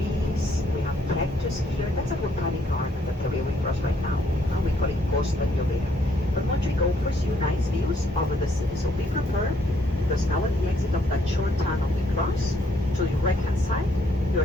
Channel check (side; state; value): both; normal; correlation 0.69